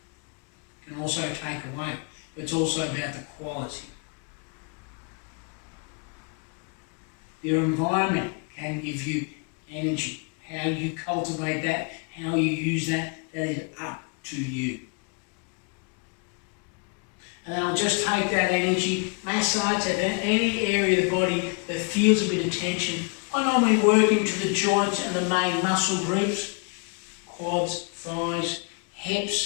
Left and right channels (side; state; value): right; quieter; 37.1 dB